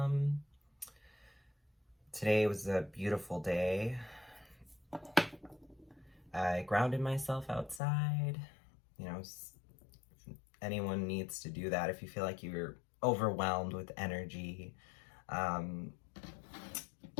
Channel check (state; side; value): drops out; right; at 7.8 s